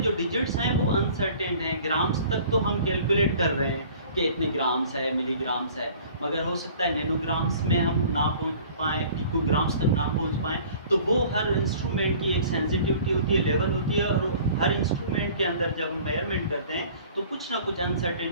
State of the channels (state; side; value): inverted; both; correlation -0.49